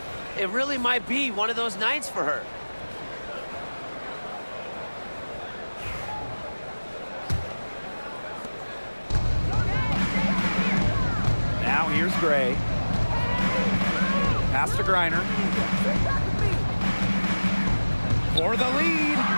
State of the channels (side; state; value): both; inverted; correlation -1.00